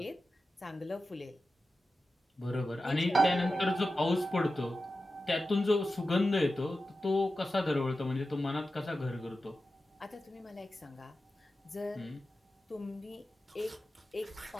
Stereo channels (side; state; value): both; normal; correlation 0.93